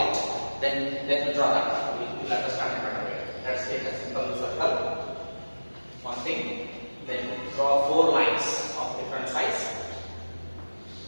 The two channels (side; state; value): both; inverted; correlation -1.00